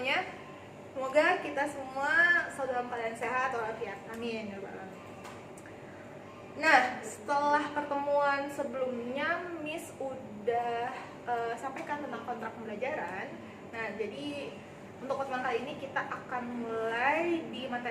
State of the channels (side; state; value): both; identical; correlation 1.00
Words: Semoga kita semua selalu dalam keadaan sehat walafiat. Amin ya rabbal alamin. Nah, setelah pertemuan sebelumnya, Miss udah sampaikan tentang kontrak pembelajaran. Nah, jadi untuk pertemuan kali ini kita akan mulai di